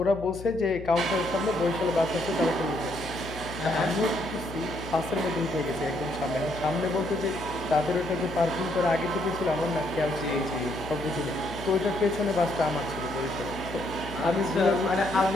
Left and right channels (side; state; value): left; noise; hum, 13 dB below the sound